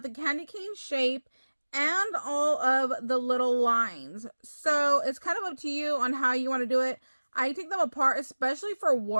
the candy cane shape and all of the little lines. So it's kind of up to you on how you want to do it. I take them apart, especially for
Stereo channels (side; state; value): both; inverted; correlation -1.00